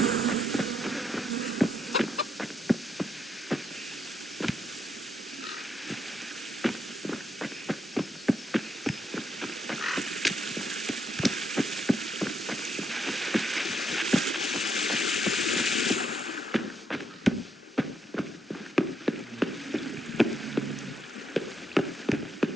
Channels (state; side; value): normal; both; correlation 0.77